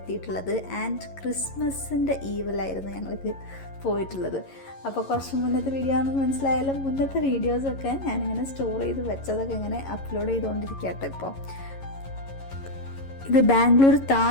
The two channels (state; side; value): late; right; 11 ms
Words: ആൻഡ് ക്രിസ്മസിൻ്റെ ഈവിലായിരുന്നു ഞങ്ങൾക്ക് പോയിട്ടുള്ളത്. അപ്പോൾ കുറച്ച് മുന്നത്തെ വീഡിയോ ആണെന്ന് മനസ്സിലായാലും മുന്നത്തെ വീഡിയോസൊക്കെ ഞാനിങ്ങനെ സ്റ്റോർ ചെയ്ത് വെച്ചതൊക്കെ ഇങ്ങനെ അപ്ലോഡ് ചെയ്തുകൊണ്ടിരിക്കുക കേട്ടോ. ഇപ്പോൾ ഇത് ബാംഗ്ലൂർ